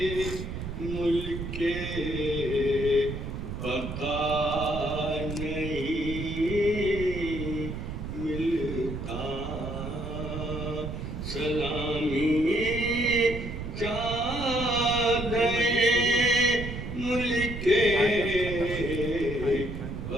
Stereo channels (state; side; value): noise; right; rumble, 6 dB below the sound